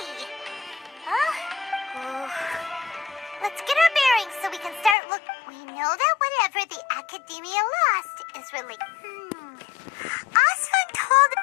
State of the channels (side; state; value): right; drops out; at 5.0 s